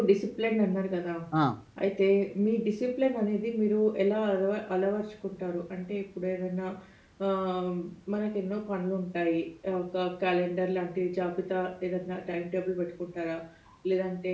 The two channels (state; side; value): identical; both; correlation 1.00